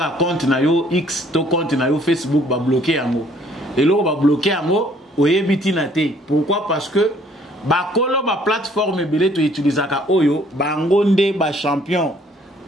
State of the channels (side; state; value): both; normal; correlation 0.61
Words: un compte na yo X, ton compte na yo Facebook va bloquer en haut. Et là, on va bloquer en haut, on est bitinate. Pourquoi? Parce que ba plateforme belé to utiliser ka oyo ba ngonde ba champion